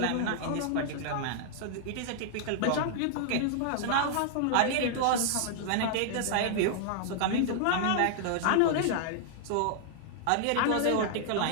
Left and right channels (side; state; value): both; different; correlation -0.01